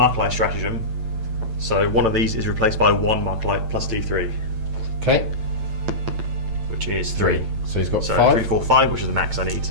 stratagem. So one of these is replaced by 1 Marklight plus D3. Okay. Which is 3. So he's got 5. 3, 4, 5, which is the max I need.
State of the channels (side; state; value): left; late; 9.0 ms